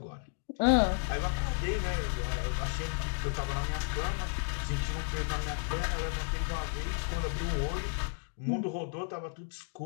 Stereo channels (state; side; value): silent; right; 56 dB below the other